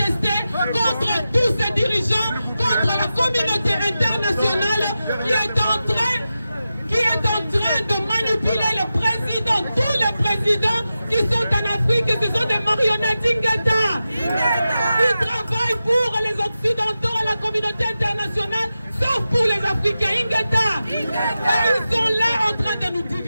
contre tous ces dirigeants, contre la communauté internationale qui est en train de manipuler le président, tous les présidents qui sont en Afrique, ce sont des marionnettes. Ingata. Ils travaillent pour les Occidentaux et la communauté internationale, sauf pour les Africains. Ingata. Et ils sont là en train de nous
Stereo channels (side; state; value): both; inverted; correlation -0.92